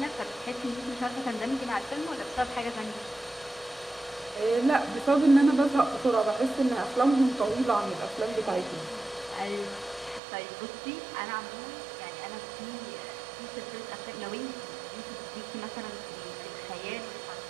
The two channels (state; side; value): drops out; left; at 10.2 s